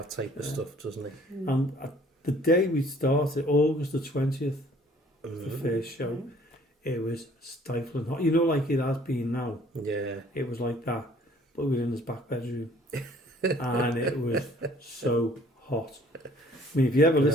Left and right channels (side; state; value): both; normal; correlation 0.57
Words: type of stuff, doesn't he? And the day we started, August the 20th, the first show, it was stifling hot. You know, like it has been now. Yeah. It was like that, but we were in his back bedroom, and it was so hot. I mean, if you ever